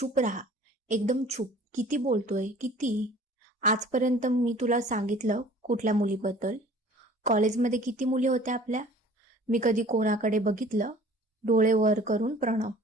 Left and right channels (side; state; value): both; normal; correlation 0.49